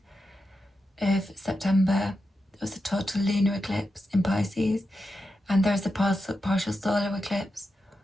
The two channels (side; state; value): both; normal; correlation 0.88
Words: of September. There was a total lunar eclipse in Pisces, and there's a partial solar eclipse